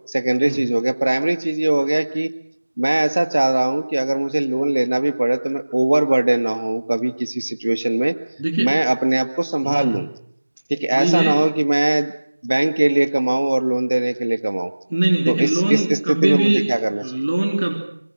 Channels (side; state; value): both; inverted; correlation -1.00